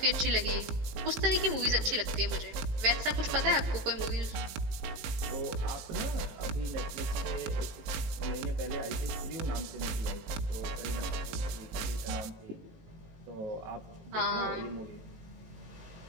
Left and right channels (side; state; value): left; late; 19 ms